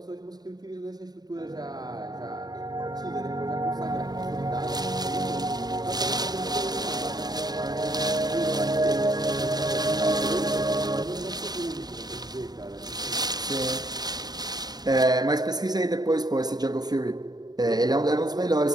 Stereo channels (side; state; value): left; late; 0.19 ms